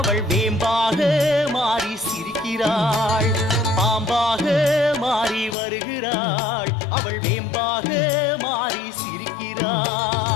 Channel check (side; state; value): right; drops out; at 5.6 s